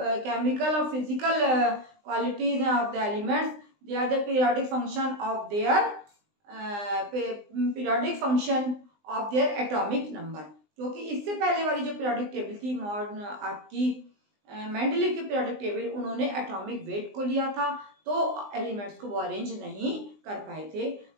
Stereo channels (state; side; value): late; left; 20 ms